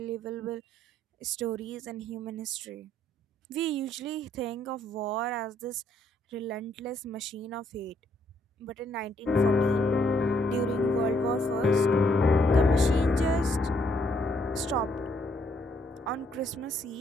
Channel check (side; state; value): both; normal; correlation 0.70